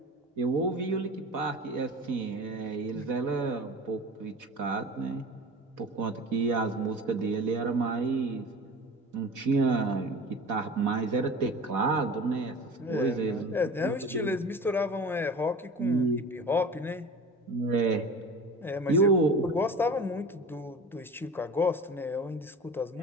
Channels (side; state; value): both; normal; correlation 0.37